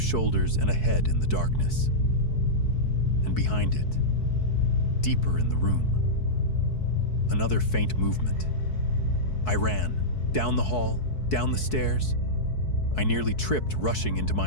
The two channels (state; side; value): late; right; 4.6 ms